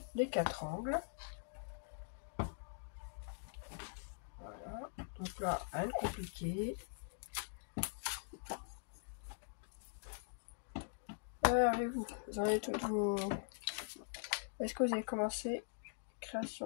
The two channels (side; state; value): right; silent; digital silence